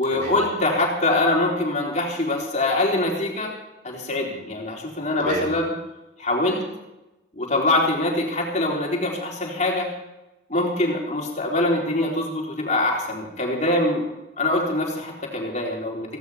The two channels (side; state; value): both; normal; correlation 0.08